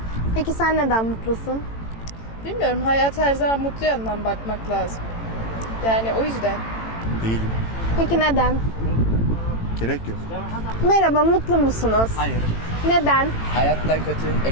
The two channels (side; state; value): right; late; 18 ms